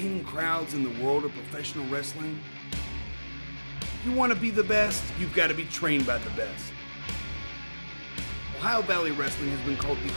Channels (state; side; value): inverted; both; correlation -1.00